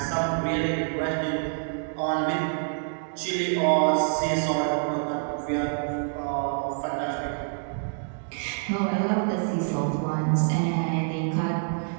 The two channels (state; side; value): silent; left; digital silence